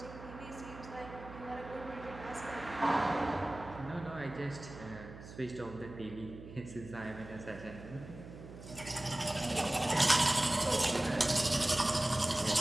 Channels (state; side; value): noise; right; hum, 14 dB below the sound